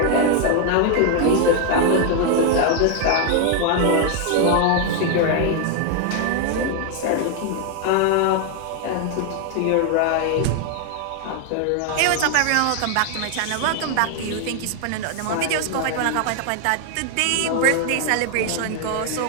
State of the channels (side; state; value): both; different; correlation 0.00